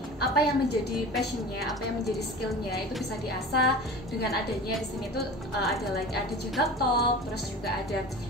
Apa yang menjadi passionnya, apa yang menjadi skillnya itu bisa diasah dengan adanya di sini tuh ada Jagat Talk, terus juga ada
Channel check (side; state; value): both; normal; correlation 0.35